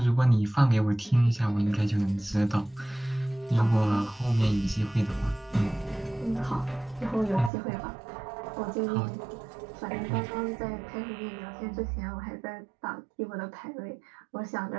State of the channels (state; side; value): drops out; left; at 7.5 s